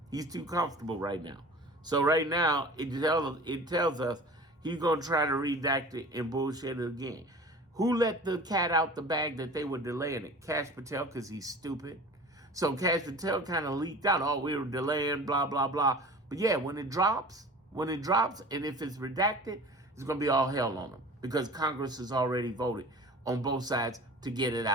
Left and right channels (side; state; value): both; normal; correlation 0.40